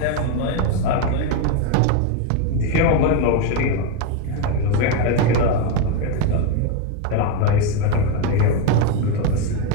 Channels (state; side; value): different; both; correlation 0.02